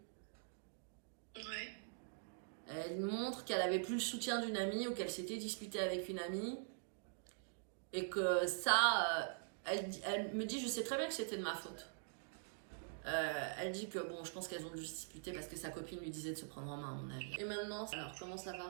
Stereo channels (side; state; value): left; silent; digital silence